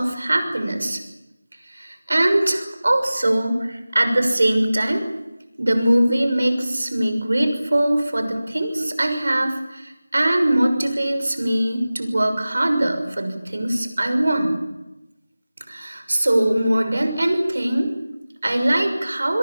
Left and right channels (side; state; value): both; inverted; correlation -0.97